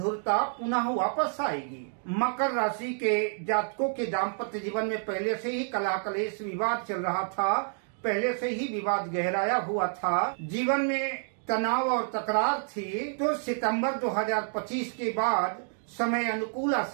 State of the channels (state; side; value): silent; left; 59 dB below the other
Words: पुनः वापस आएगी। मकर राशि के जातकों के दाम्पत्य जीवन में पहले से ही कलह कलेश विवाद चल रहा था, पहले से ही विवाद गहराया हुआ था, जीवन में तनाव और तकरार थी। तो सितंबर 2025 के बाद समय अनुकूल आ